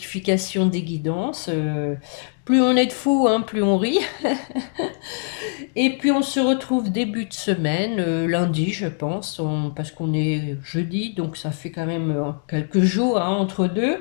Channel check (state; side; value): silent; right; digital silence